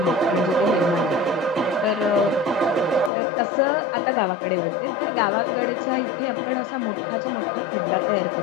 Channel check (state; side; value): drops out; right; at 3.1 s